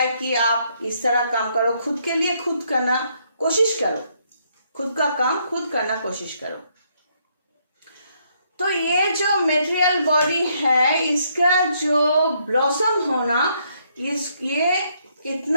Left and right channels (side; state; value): both; inverted; correlation -0.72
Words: कि आप इस तरह काम करो, खुद के लिए खुद करना कोशिश करो, खुद का काम खुद करना कोशिश करो। तो ये जो मेटेरियल बॉडी है, इसका जो ब्लॉसम होना, ये